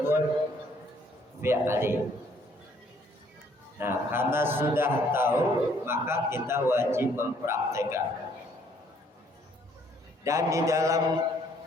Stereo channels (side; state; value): both; normal; correlation 0.64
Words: fi'li. Nah, karena sudah tahu, maka kita wajib mempraktekkan. Dan di dalam